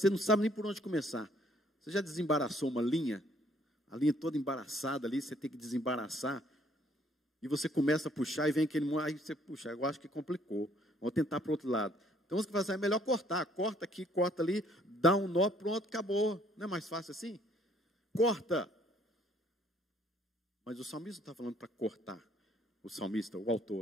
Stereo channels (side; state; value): both; normal; correlation 0.63